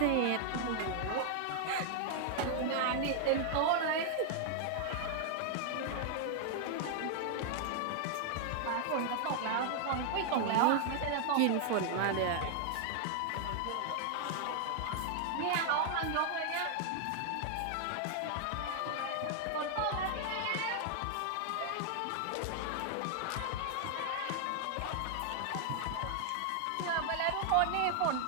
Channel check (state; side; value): different; both; correlation 0.00